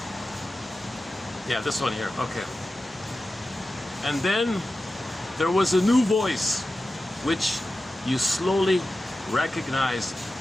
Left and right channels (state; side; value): normal; both; correlation 0.93